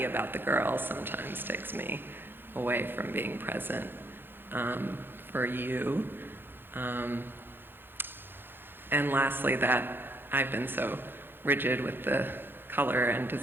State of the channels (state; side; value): late; left; 0.10 ms